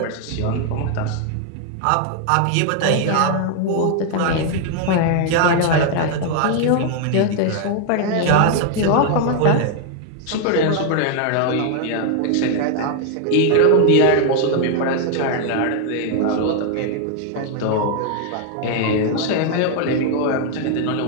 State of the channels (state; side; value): different; both; correlation 0.00